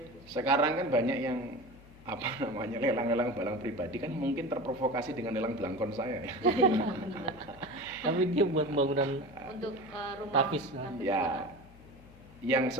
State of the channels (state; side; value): noise; left; hum, 22 dB below the sound